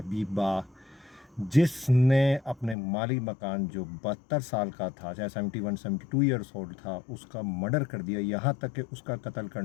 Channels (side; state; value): right; drops out; at 2.8 s